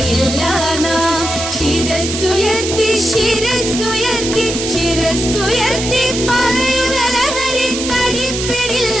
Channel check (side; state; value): right; noise; hiss, 5 dB below the sound